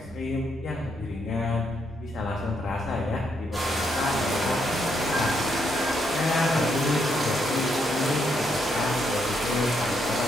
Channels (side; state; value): both; normal; correlation 0.76